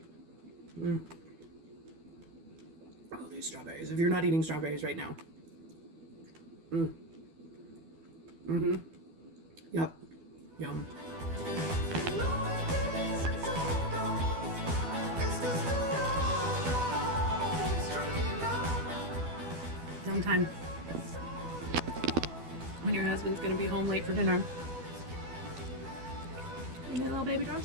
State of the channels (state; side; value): late; left; 12 ms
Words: Oh, these strawberries. If you're not eating strawberries right now. Yep. Yum. Sometime when your husband's gonna be home late for dinner, you need a little baby